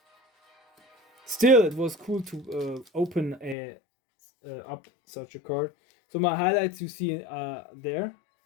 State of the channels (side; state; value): right; drops out; at 3.6 s